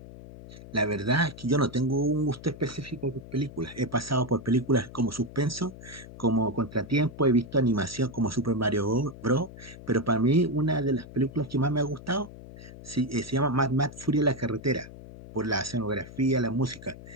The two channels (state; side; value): noise; left; hum, 16 dB below the sound